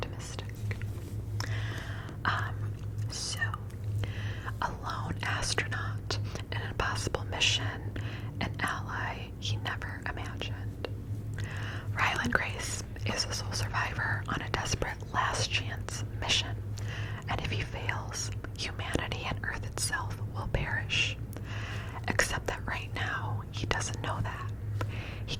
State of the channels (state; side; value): identical; both; correlation 1.00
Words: So, a lone astronaut in an impossible mission, an ally he never imagined. Ryland Grace is a sole survivor on a desperate last chance mission, and if he fails, humanity and Earth itself will perish. Except that right now, he doesn't know that. He